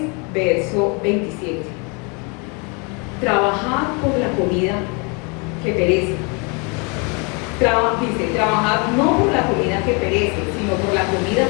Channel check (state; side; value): quieter; right; 32.5 dB